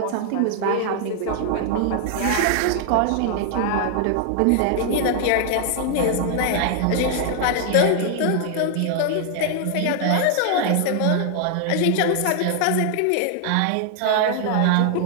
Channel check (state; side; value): different; both; correlation 0.00